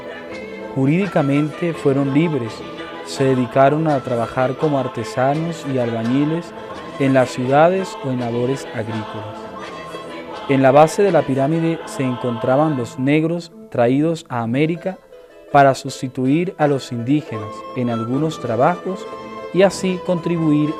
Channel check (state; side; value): identical; both; correlation 1.00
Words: Jurídicamente fueron libres, se dedicaron a trabajar como artesanos y albañiles en las ciudades o en labores agrícolas. En la base de la pirámide se encontraban los negros traídos a América para sustituir a los indígenas en algunos trabajos y así contribuir